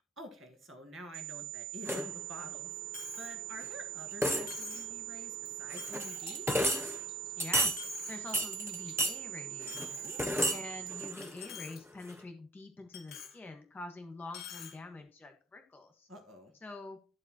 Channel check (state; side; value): normal; both; correlation 0.53